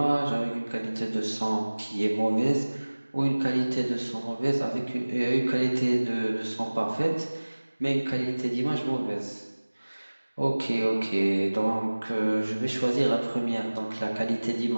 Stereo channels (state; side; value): inverted; both; correlation -1.00